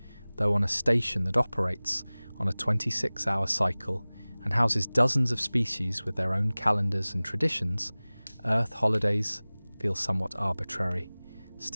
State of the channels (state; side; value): inverted; both; correlation -1.00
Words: though on a station that operates on a 26-hour cycle and houses dozens of species with their own calendars and traditions, Earth holidays feel somewhat arbitrary.